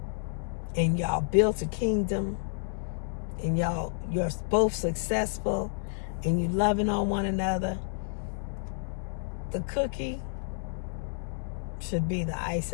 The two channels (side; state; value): right; silent; digital silence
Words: and y'all built a kingdom and you're both successful and you loving on one another, the cookie should be the